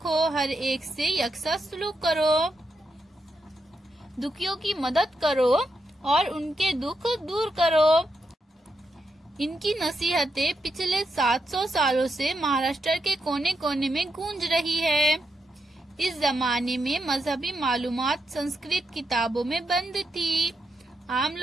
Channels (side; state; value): both; normal; correlation 0.84